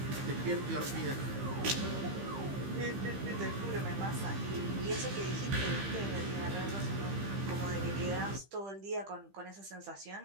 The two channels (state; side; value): late; left; 15 ms